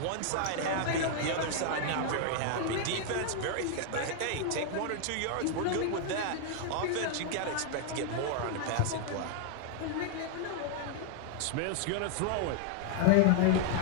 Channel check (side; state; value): both; different; correlation 0.00